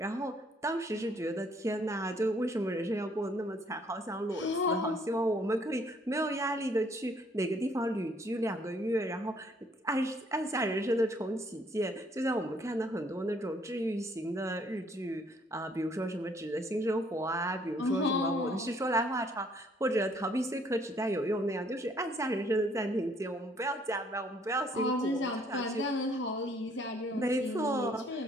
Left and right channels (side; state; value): both; normal; correlation 0.64